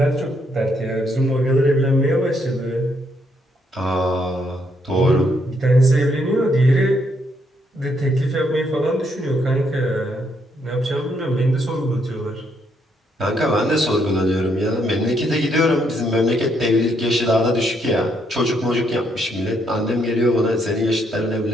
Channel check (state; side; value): normal; both; correlation 0.74